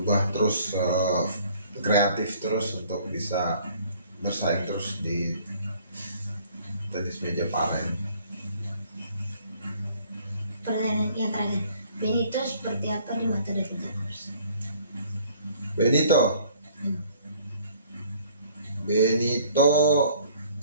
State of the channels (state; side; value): inverted; both; correlation -0.57